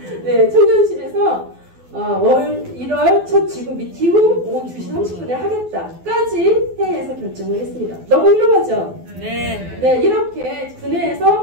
청년실에서 1월 첫 지구 미팅 후 오후 2시 30분에 하겠다까지 회의에서 결정을 했습니다. 너무 훌륭하죠? 네, 이렇게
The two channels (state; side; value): late; left; 12 ms